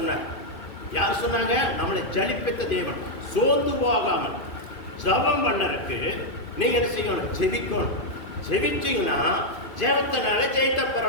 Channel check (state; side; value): late; right; 2.5 ms